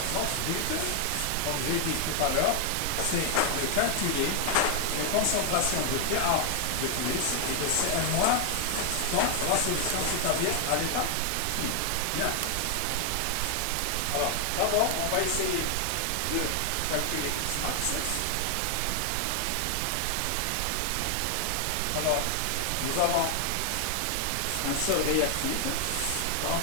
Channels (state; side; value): different; both; correlation 0.00